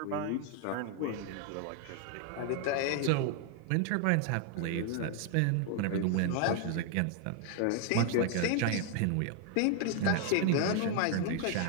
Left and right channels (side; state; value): both; different; correlation 0.00